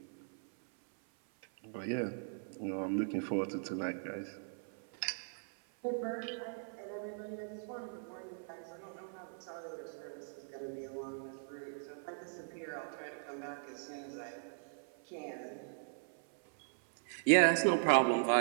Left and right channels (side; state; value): left; silent; 52 dB below the other